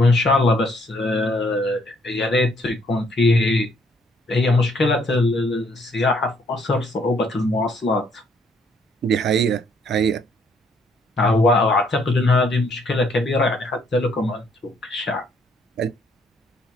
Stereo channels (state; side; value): normal; both; correlation 0.67